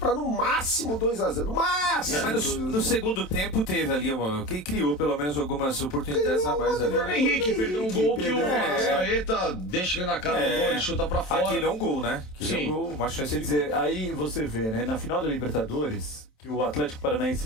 no máximo 2-0. No máximo! Mas no segundo tempo teve ali quem criou pelo menos algumas oportunidades a mais ali. O Henrique perdeu um gol que o Arrascaeta deixa ele na cara do gol, ele chuta pra fora. Aquele é um gol, né? Aquele é um gol, uma chance de dizer. Aí você vê, né? Na final da Libertadores, que o Atlético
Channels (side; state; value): right; late; 27 ms